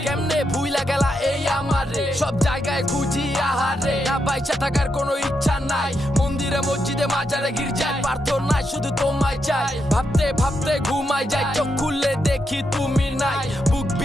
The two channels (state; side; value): normal; both; correlation 0.83